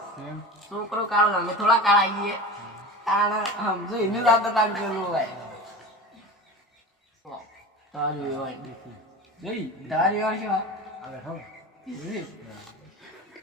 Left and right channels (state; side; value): normal; both; correlation 0.31